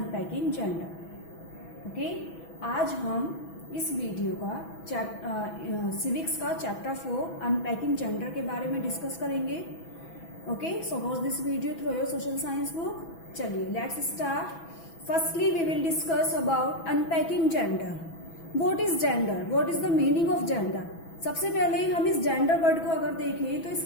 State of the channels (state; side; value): late; right; 6.1 ms